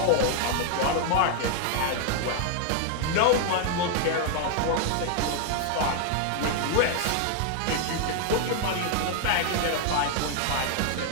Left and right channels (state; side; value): different; both; correlation 0.00